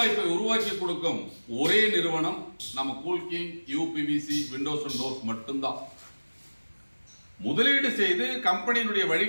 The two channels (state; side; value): inverted; both; correlation -1.00